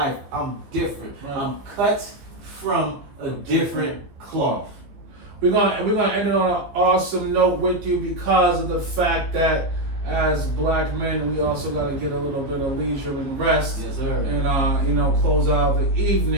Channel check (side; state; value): left; late; 14 ms